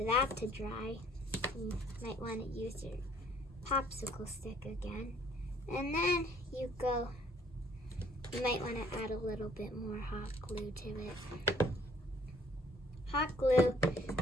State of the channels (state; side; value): normal; both; correlation 0.60